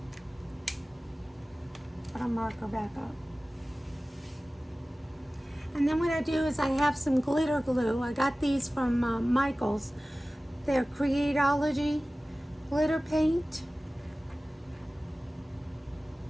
Put our marker back up. And then what I do is I have some glitter glue. I got these from Michaels. They're Creatology glitter paint.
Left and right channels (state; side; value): normal; both; correlation 0.97